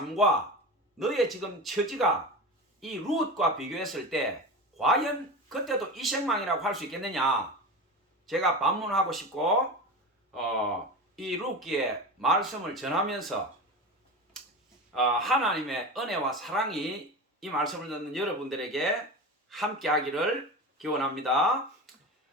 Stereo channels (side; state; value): both; normal; correlation 0.27